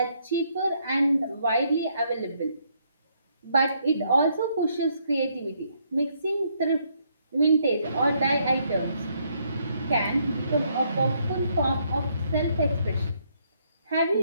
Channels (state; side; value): inverted; both; correlation -0.72